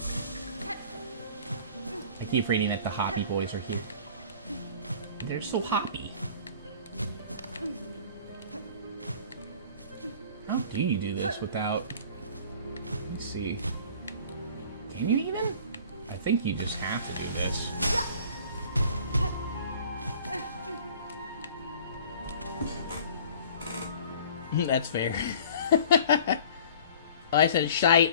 I keep reading that the Hoppy Boys are here. They're so hoppy. How do you do this without... Let's see. Can you even? I think you just have to do this. That's fair. Oh, I said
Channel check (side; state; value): both; inverted; correlation -0.48